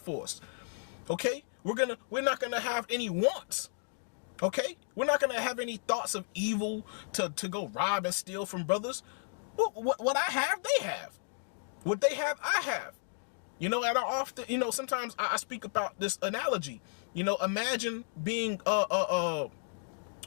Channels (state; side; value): silent; right; digital silence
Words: for us. Okay, we're not going to have any wants. Okay, we're not going to have any thoughts of evil to go rob and steal from brothers. What I have, they have. What they have, I have. You know, and I often, you know, sometimes I speak about this analogy. You know, imagine being